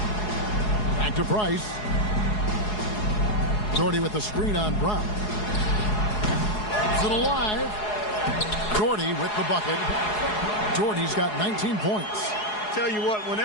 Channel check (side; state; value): right; late; 4.8 ms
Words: Back to Price. Doherty with the screen on Brown. Is it alive? Doherty with the bucket. Doherty's got 19 points. Tell you what,